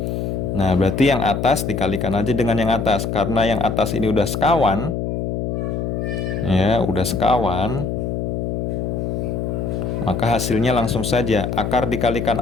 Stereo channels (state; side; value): noise; left; hum, 2 dB below the sound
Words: Nah, berarti yang atas dikalikan aja dengan yang atas. Karena yang atas ini udah sekawan. Ya, udah sekawan. Maka hasilnya langsung saja. Akar dikalikan